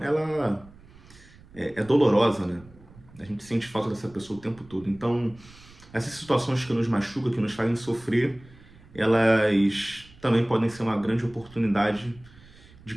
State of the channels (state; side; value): noise; right; rumble, 23 dB below the sound